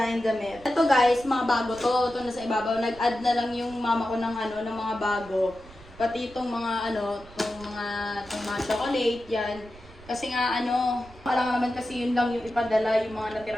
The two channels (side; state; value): right; noise; rumble, 21 dB below the sound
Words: damit. Ito guys, mga bago to. Ito nasa ibabaw. Nag-add na lang yung mama ko ng ng mga bago. Pati itong mga itong mga chocolate, yan. Kasi nga parang naman kasi yun lang yung ipadala yung mga